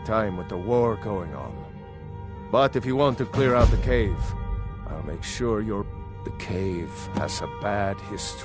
time with the war going on. But if you want to clear out the cave, I'll make sure you're... The cave has a bad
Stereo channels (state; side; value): identical; both; correlation 1.00